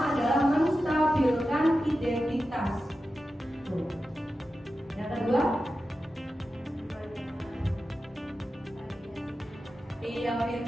adalah menstabilkan identitas. Tuh. Yang kedua? Iya,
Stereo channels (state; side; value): normal; both; correlation 0.92